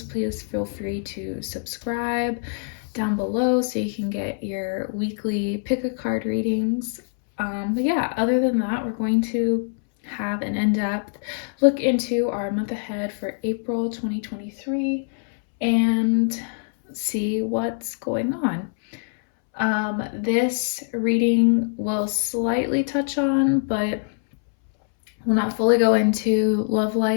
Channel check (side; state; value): right; silent; 63 dB below the other